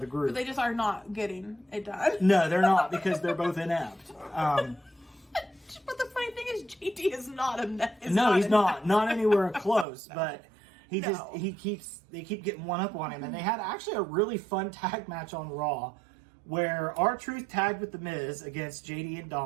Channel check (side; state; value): left; drops out; at 9.9 s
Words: the group. But they just are not getting it done. No, they're not, because they're both inept. But the funny thing is, JD is not inept. He's not anywhere close. But they keep getting one up on him, and they had actually a really fun tag match on Raw, where R-Truth tagged with The Miz against JD and